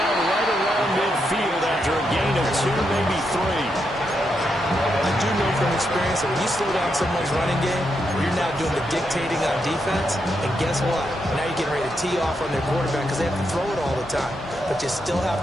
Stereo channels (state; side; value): normal; both; correlation 0.82